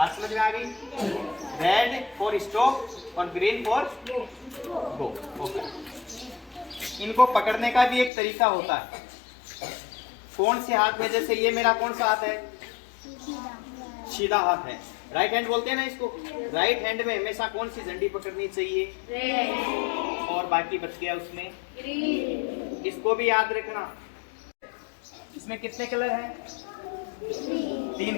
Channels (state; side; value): drops out; right; at 8.1 s